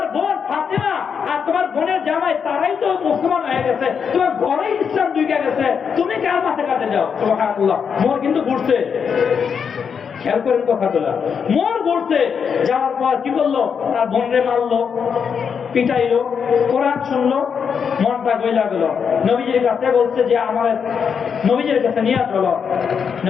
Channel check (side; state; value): right; quieter; 6.7 dB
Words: বোন ফাতেমা আর তোমার বোনের জামাই তারাই তো মুসলমান হয়ে গেছে, তোমার ঘরেই ইসলাম ঢুকে গেছে, তুমি কার মাথা কাটে যাও? সুবহানাল্লাহ। মোর কিন্তু ঘুরছে, খেয়াল করেন কথাগুলা, মোর ঘুরছে। যাওয়ার পর কি করলো, তার বোনরে মারলো, পিটাইলো, কোরআন শুনলো, মনটা গইলা গেল। নবীজির কাছে বলছে যে আমার নবীজির কাছে নিয়ে চলো।